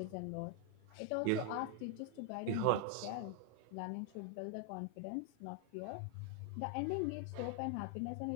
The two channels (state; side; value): different; both; correlation 0.01